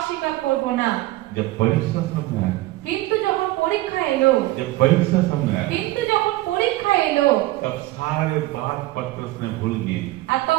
করব না। जब परीक्षा सामने आया, কিন্তু যখন পরীক্ষা এলো, जब परीक्षा सामने आया, কিন্তু যখন পরীক্ষা এলো, तब सारे बात पतरस ने भूल गए। আর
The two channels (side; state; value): left; quieter; 18.1 dB